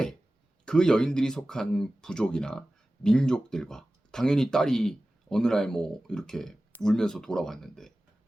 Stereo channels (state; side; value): normal; both; correlation 0.96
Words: 그 여인들이 속한 부족이나 민족들과 당연히 딸이 어느 날 뭐 이렇게 울면서 돌아왔는데